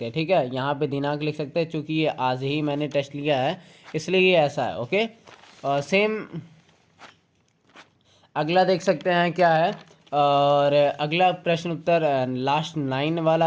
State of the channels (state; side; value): identical; both; correlation 1.00